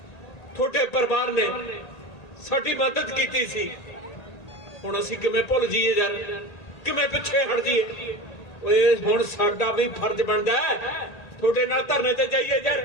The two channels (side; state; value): right; late; 1.8 ms